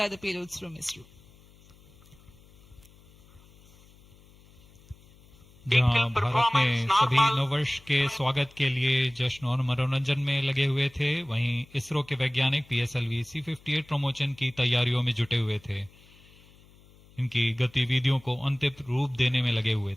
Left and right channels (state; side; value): noise; left; hum, 26 dB below the sound